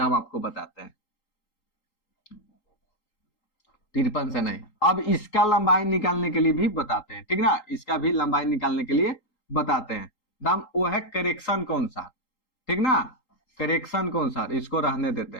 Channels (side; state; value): right; late; 3.8 ms